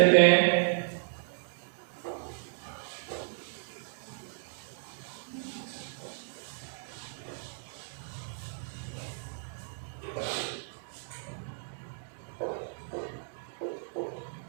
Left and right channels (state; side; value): silent; left; digital silence